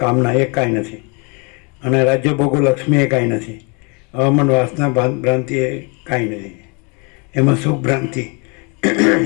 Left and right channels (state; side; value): quieter; right; 32.6 dB